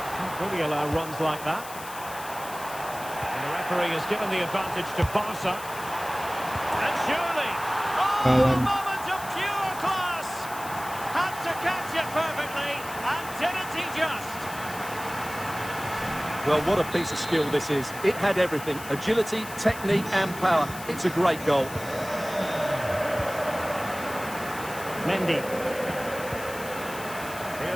really allow runs like that. And the referee has given the advantage to Barca. And surely, a moment of pure class. Had to catch it perfectly, and didn't he just? Well, what a piece of skill this is. It had everything: agility, technique and power. It's a great goal. Mendy.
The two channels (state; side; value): noise; left; hiss, 14 dB below the sound